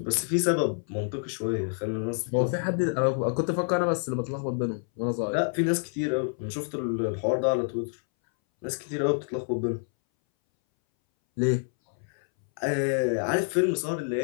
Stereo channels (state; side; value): silent; right; 60 dB below the other